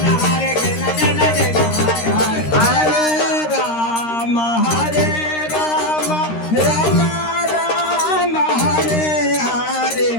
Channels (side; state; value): right; late; 13 ms